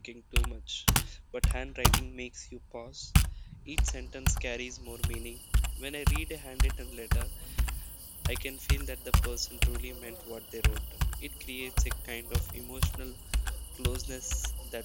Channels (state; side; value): identical; both; correlation 1.00